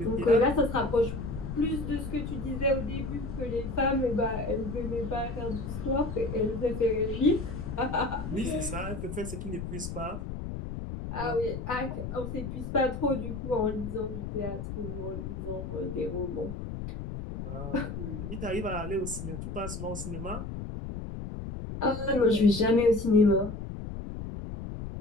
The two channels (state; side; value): noise; left; rumble, 6 dB below the sound